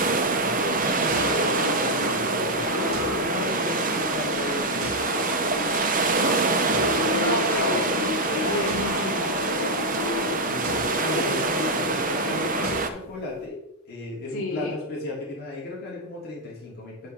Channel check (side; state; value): both; normal; correlation -0.01